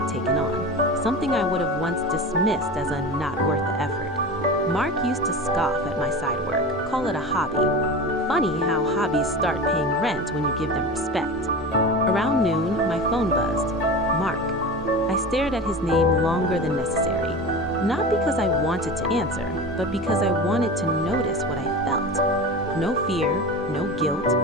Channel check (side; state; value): both; normal; correlation 0.30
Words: taken on, something I would have once dismissed as a not worth the effort. Mark used to scoff at my side work, call it a hobby. Funny how hobbies start paying rent when you give them respect. Around noon, my phone buzzed. Mark. I stared at his name longer than necessary, not because I wanted to answer, but because I wanted to notice what I felt. No fear, no guilt,